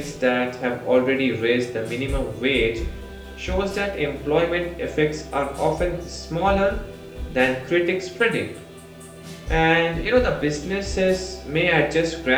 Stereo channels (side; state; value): both; identical; correlation 1.00